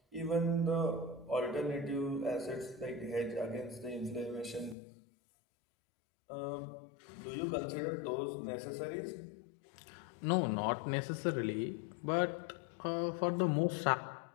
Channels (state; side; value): drops out; right; at 4.8 s